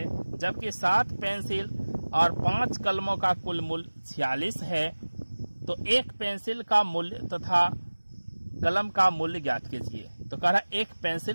जबकि 7 पेंसिल और 5 कलमों का कुल मूल्य 46 है। तो एक पेंसिल का मूल्य तथा कलम का मूल्य ज्ञात कीजिए। तो कह रहा है एक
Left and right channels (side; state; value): both; inverted; correlation -1.00